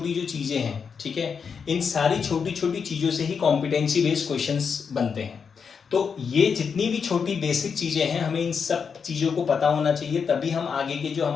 जो चीजें हैं, ठीक है, इन सारी छोटी छोटी चीजों से ही कॉम्पिटेंसी बेस्ड क्वेश्चंस बनते हैं। तो ये जितनी भी छोटी बेसिक चीजें हैं, हमें इन सब चीजों को पता होना चाहिए, तभी हम आगे के जो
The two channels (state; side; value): quieter; right; 6.2 dB